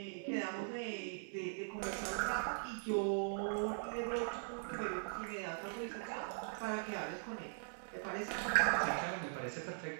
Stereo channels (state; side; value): silent; left; 50 dB below the other